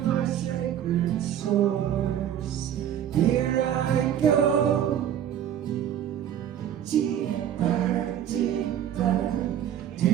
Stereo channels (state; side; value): quieter; left; 10.1 dB